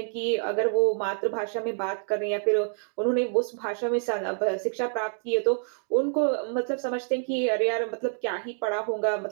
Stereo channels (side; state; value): left; silent; 60 dB below the other